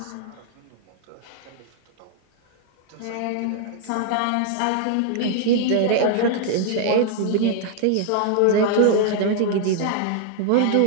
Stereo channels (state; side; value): different; both; correlation 0.00